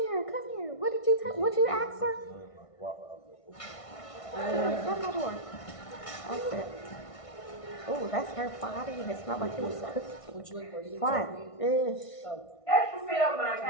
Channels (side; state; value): right; late; 1.5 ms